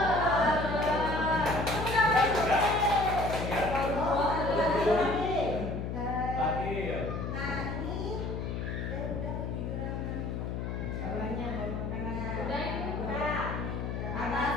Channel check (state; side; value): noise; left; hum, 3 dB below the sound